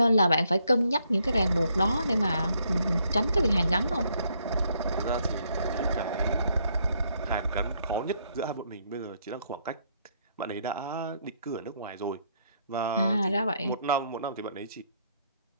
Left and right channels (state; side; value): inverted; both; correlation -0.72